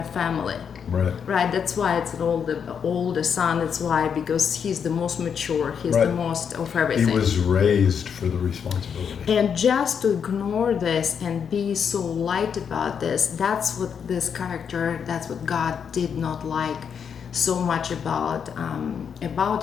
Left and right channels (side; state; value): right; quieter; 7.2 dB